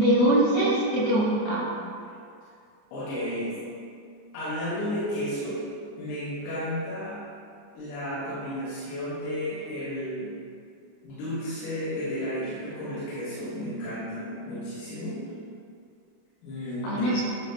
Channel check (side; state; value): right; late; 29 ms